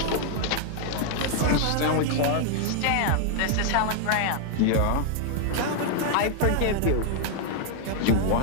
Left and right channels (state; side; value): different; both; correlation 0.00